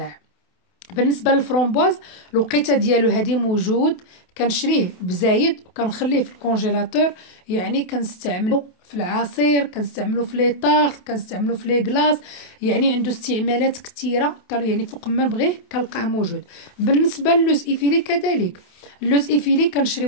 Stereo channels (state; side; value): late; right; 28 ms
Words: بالنسبه للفرومبواز الوقيته ديالو هذه موجود، كنشريه بزايد وكنخليه في الكونجيلاتور. يعني كنستعملو في العصير، كنستعملو في لي طارت، كنستعملو في لي كلاص. يعني عنده استعمالات كثيره، يعني فوق ما نبغيه كنلقاه موجود. بالنسبه للوز ايفيلي كذلك، اللوز ايفيلي كنشري